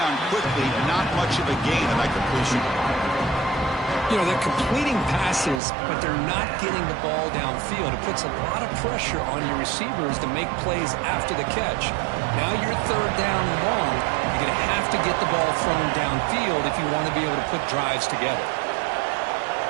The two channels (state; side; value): drops out; left; at 5.6 s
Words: quickly, not much of a gain on that completion. You know, they're completing passes, but they're not getting the ball downfield. It puts a lot of pressure on your receivers to make plays after the catch. Now you're third down and long. You're going to have to get the ball thrown downfield if you want to be able to put drives together.